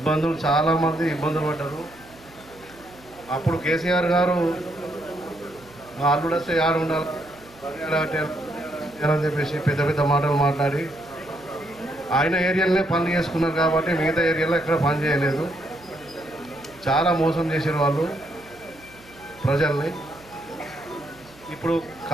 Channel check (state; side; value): noise; right; hum, 25 dB below the sound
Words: చాలామంది ఇబ్బందులు పడ్డారు. అప్పుడు కేసీఆర్ గారు మా అల్లుడు వస్తే యాడ ఉండాలి అని చెప్పేసి పెద్ద పెద్ద మాటలు మాట్లాడి ఆయన ఏరియాలోనే పనులు చేసుకున్నారు కాబట్టి మిగతా ఏరియాలో ఎక్కడ పని చేయలేదు. చాలా మోసం చేశారు వాళ్ళు ప్రజల్ని. ఇప్పుడు